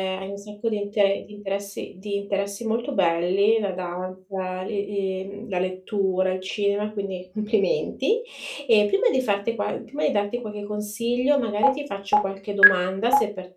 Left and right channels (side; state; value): both; identical; correlation 1.00